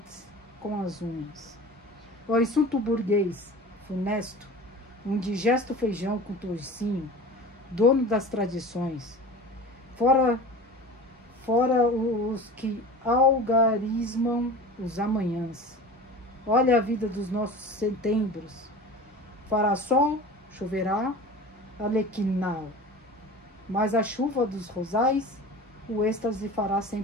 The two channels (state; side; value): normal; both; correlation 0.36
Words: com as unhas. O insulto burguês, funesto, um digesto feijão com toucinho, dono das tradições, fora os que algarismam os amanhãs. Olha a vida dos nossos setembros. Fará sol, choverá, alequinal. Mas a chuva dos rosais, o êxtase fará